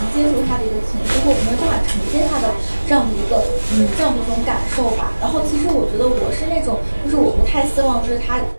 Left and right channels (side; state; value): both; inverted; correlation -1.00